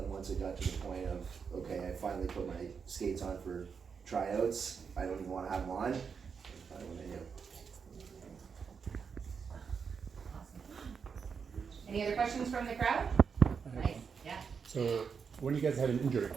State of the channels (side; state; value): left; quieter; 6.1 dB